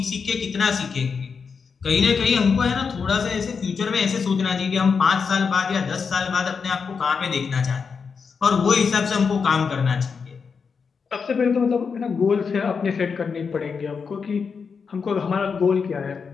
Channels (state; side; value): quieter; right; 5.6 dB